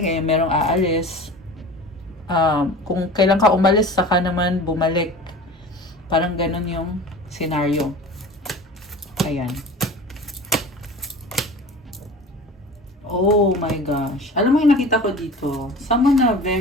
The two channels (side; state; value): both; normal; correlation 0.38